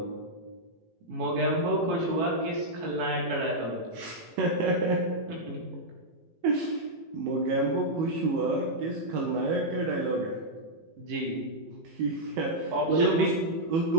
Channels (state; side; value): late; left; 18 ms